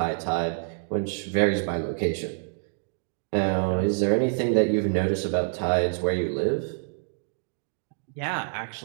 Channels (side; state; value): left; silent; digital silence